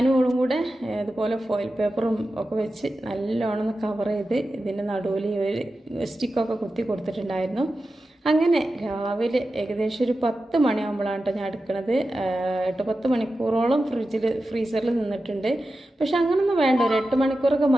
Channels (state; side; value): normal; both; correlation 0.92